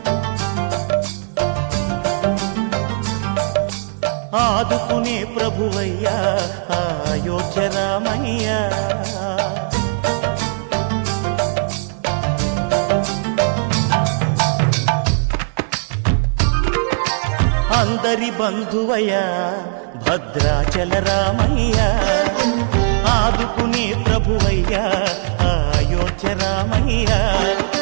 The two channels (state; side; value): silent; left; digital silence